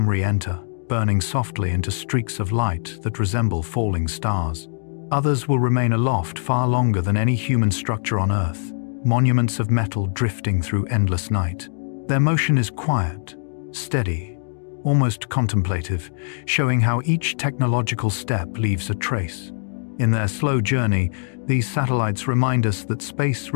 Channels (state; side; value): silent; right; digital silence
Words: re-enter, burning softly into streaks of light that resemble falling stars. Others will remain aloft far longer than any human structure on Earth, monuments of metal drifting through endless night. Their motion is quiet, steady, almost contemplative, showing how each technological step leaves a trace. In their slow journey, these satellites remind us that space